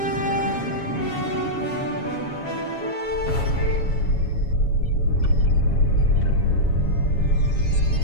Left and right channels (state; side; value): late; right; 7.2 ms